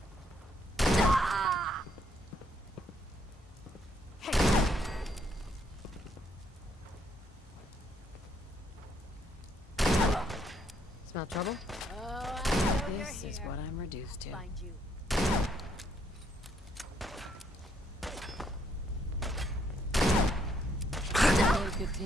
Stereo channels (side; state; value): both; normal; correlation 0.71